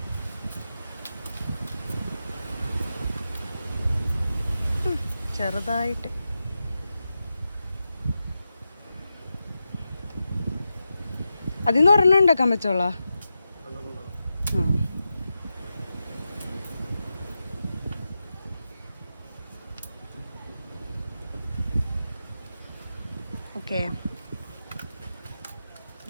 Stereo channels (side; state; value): both; inverted; correlation -0.90